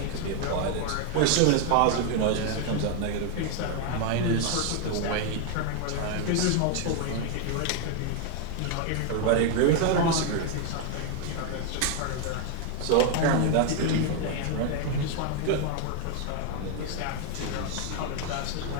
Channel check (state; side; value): different; both; correlation 0.01